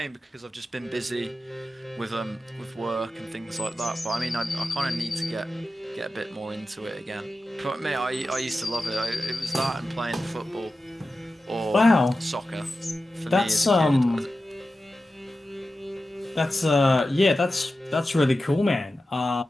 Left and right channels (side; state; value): both; normal; correlation 0.93